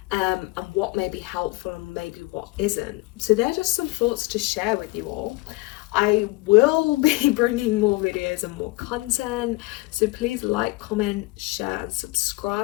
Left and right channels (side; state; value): right; quieter; 21.8 dB